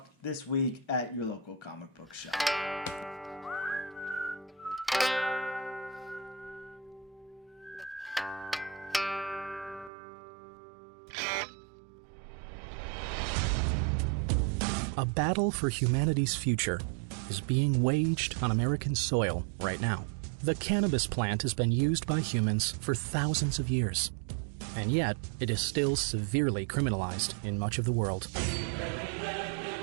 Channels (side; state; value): left; drops out; at 9.9 s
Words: this week at your local comic book shop. A battle for humanity's future is being waged on American soil right now. The cannabis plant has been used by humans for thousands of years, and yet it is still severely criminalized in much of the world.